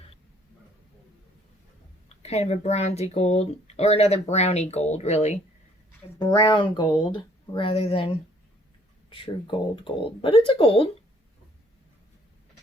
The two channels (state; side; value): normal; both; correlation 0.61